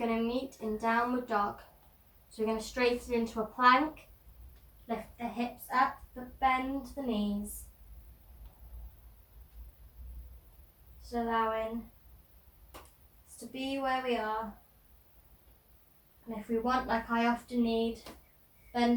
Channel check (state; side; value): identical; both; correlation 1.00